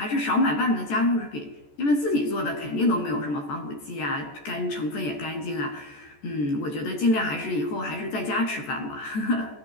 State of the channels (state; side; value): late; right; 14 ms